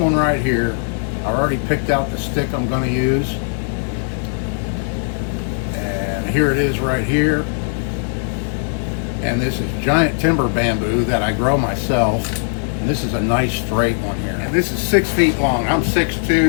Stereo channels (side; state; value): right; silent; digital silence